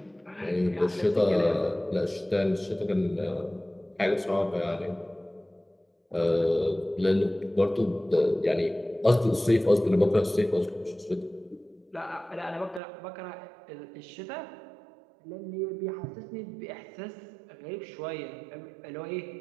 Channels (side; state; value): left; drops out; at 12.8 s